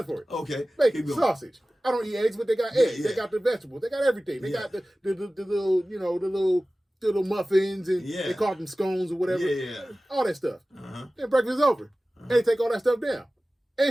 for it. Okay. Bacon, sausage, I don't eat eggs, but they got eggs. Yeah. They got the vegetables. They got everything. They got the little, the little muffins, and they call them scones or whatever. Yeah. All that stuff. Then breakfast is over. They take all that stuff down.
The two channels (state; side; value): normal; both; correlation 0.96